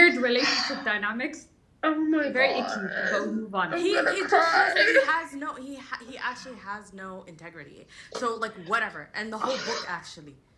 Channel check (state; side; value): identical; both; correlation 1.00